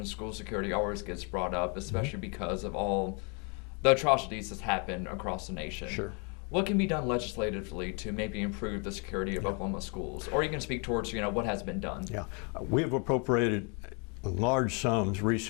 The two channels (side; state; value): right; quieter; 35.3 dB